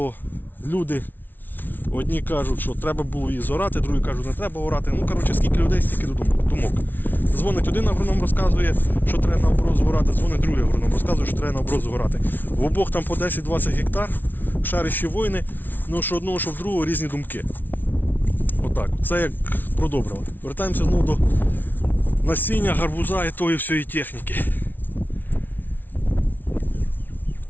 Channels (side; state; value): right; late; 0.088 ms